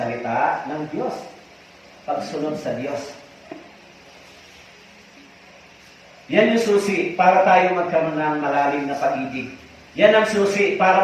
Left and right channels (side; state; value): both; identical; correlation 1.00